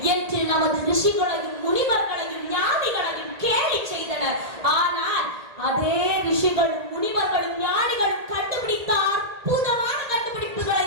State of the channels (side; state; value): left; late; 1.8 ms